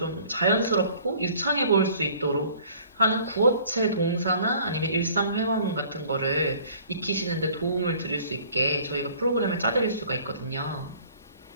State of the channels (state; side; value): inverted; both; correlation -0.53